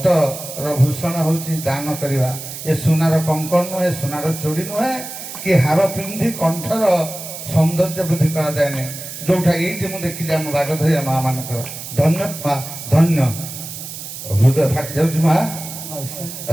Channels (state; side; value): noise; right; hiss, 10 dB below the sound